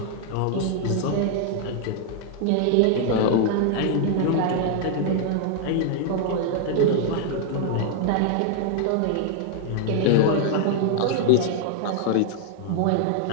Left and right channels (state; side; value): different; both; correlation 0.00